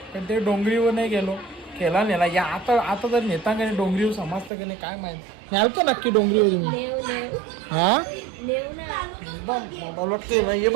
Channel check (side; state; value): left; drops out; at 4.5 s